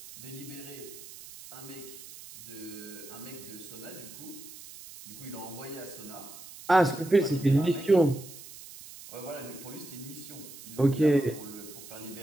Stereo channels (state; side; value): noise; right; hiss, 15 dB below the sound